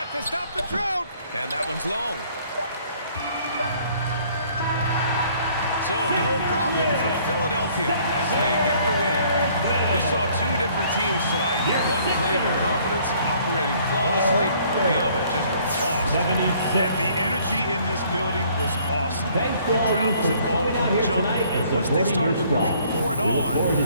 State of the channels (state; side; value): inverted; both; correlation -0.60